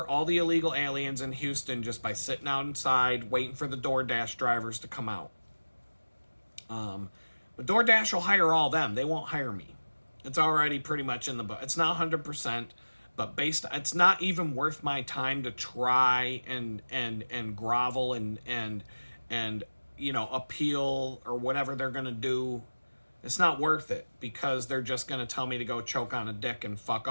all the illegal aliens in Houston just by sitting outside, waiting for the DoorDash drivers to come out. But DoorDash will hire all them. They won't hire me. It's already pretty much in the book. It's not 100%. But it's not even worth my time to try and grovel and appeal or whatever they're gonna do. It's not worth it because they're just gonna tell me to go choke on a dick and fuck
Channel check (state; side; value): inverted; both; correlation -1.00